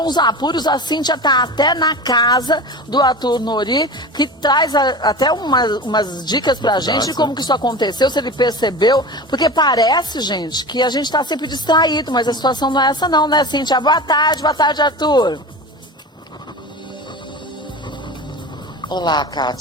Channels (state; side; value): normal; both; correlation 0.31